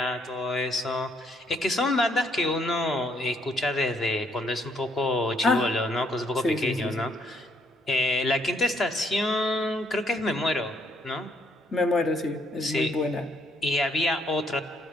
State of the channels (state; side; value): normal; both; correlation 0.69